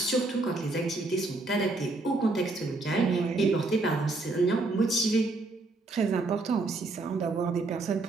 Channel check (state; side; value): quieter; left; 3.2 dB